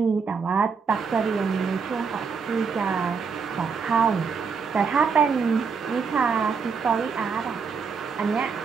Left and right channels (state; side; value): quieter; left; 5.6 dB